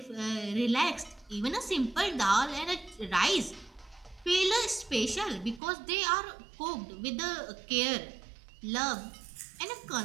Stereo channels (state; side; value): drops out; left; at 5.6 s